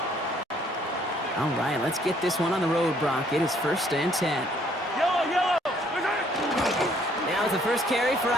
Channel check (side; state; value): both; normal; correlation 0.64